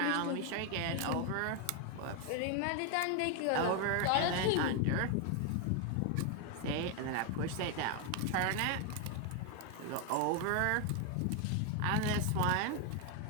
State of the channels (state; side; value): different; both; correlation 0.01